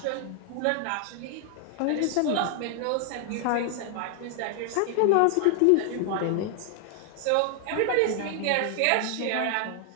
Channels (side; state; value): both; different; correlation 0.00